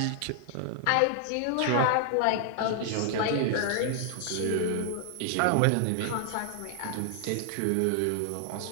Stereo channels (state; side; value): different; both; correlation 0.00